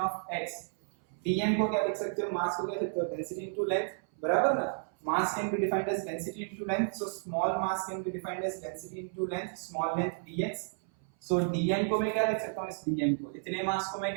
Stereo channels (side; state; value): left; silent; 56 dB below the other